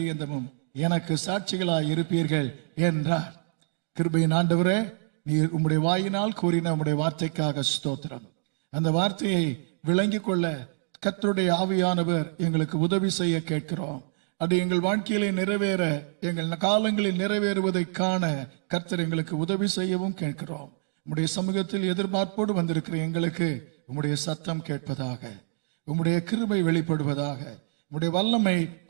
எனக்கு சாட்சிகளாய் இருப்பீர்கள் என்றார். கிருபையின் ஆண்டவரே, நீர் உம்முடைய வாயினால் கூறின உம்முடைய வார்த்தைக்காக ஸ்தோத்திரம். அந்த வார்த்தையை விளங்கிக் கொள்ள கர்த்தருடைய ஆவியானவர் எங்களுக்கு உதவி செய்ய கேட்கிறோம். அது எங்கள் வாழ்க்கையிலே நிறைவேற, எங்கள் காலங்களில் நிறைவேறுவதை காண கர்த்தர் எங்களுக்கு உதவி செய்யவும் கேட்கிறோம். உம்முடைய சமூகத்தில் எதிர்பார்ப்போடு வந்திருக்கிற எங்களுக்கு உம்முடைய சத்தம் கேட்பதாக, உம்முடைய கிருபை வெளிப்படுவதாக, உம்முடைய வல்லமை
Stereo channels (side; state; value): left; silent; digital silence